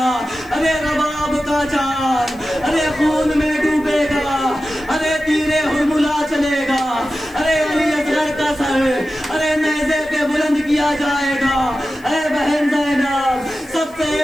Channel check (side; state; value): left; noise; hiss, 27 dB below the sound